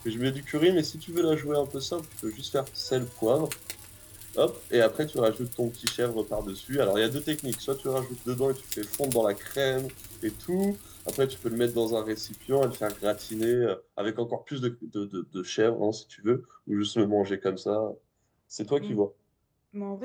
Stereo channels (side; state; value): both; identical; correlation 1.00